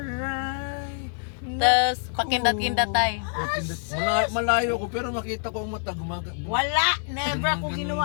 Tapos, pakindat-kindat tayo. Malayo ko pero makita ko ang mata gumaga. Wala! Never ako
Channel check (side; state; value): right; silent; 57 dB below the other